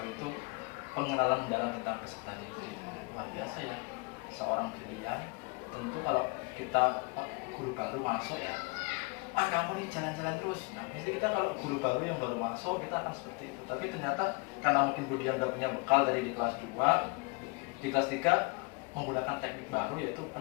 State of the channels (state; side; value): quieter; right; 30.0 dB